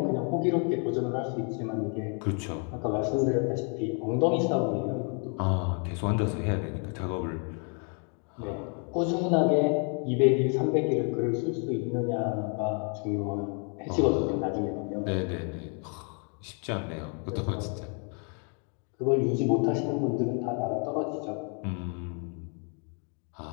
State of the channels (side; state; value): right; quieter; 39.5 dB